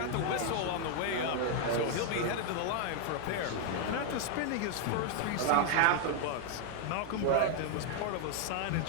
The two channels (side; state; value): both; different; correlation 0.00